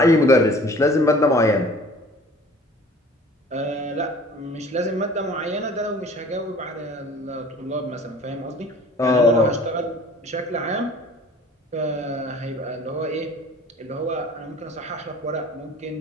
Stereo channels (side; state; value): both; normal; correlation 0.48